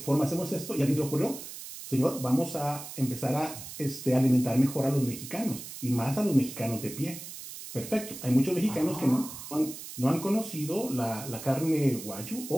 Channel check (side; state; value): right; noise; hiss, 11 dB below the sound